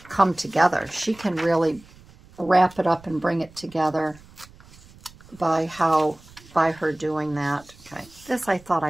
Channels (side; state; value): right; noise; rumble, 24 dB below the sound